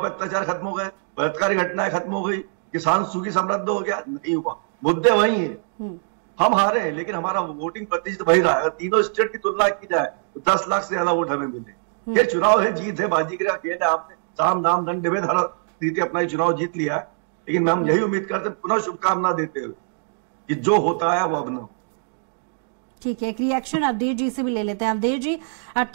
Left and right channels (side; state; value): left; silent; digital silence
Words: पर अत्याचार खत्म हो गए, बलात्कारी घटनाएं खत्म हो गई, किसान सुखी समृद्ध हो गया? नहीं हुआ। मुद्दे वही है। हम हारे हैं लेकिन हमारा वोटिंग प्रतिशत वही रहा। अगर तीनों स्टेट की तुलना की जाए तो 10 लाख से ज्यादा वोट हमें मिले। ये चुनाव है, जीत है, बाजी का खेल है। आपने साम दाम दंड भेद हर रीति अपना चुनाव जीत लिया है, लेकिन हम यही उम्मीद करते पुनः शुभकामना देते हुए कि जो होता है वो अब न हो। ठीक है, एक रिएक्शन अवधेश जी से भी ले लेते हैं। अवधेश जी,